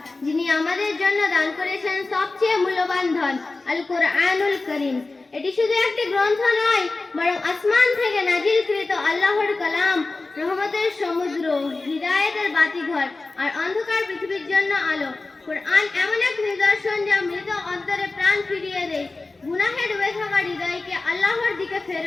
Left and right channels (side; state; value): right; quieter; 3.5 dB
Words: যিনি আমাদের জন্য দান করেছেন সবচেয়ে মূল্যবান ধন, আল কোরআনুল কারীম। এটি শুধু একটি গ্রন্থ নয়, বরং আসমান থেকে নাজিলকৃত আল্লাহর কালাম, রহমতের সমুদ্র, হিদায়াতের বাতিঘর আর অন্ধকার পৃথিবীর জন্য আলো। কোরআন এমন এক নিদর্শন যা মৃত অন্তরে প্রাণ ফিরিয়ে দেয়, গুনাহে ডুবে থাকা হৃদয়কে আল্লাহর দিকে